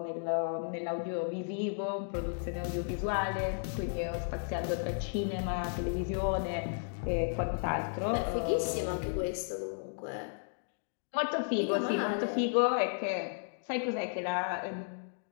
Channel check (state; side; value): silent; right; digital silence